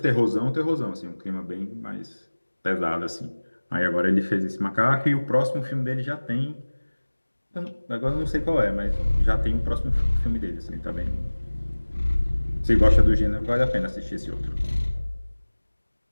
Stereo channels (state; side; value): inverted; both; correlation -1.00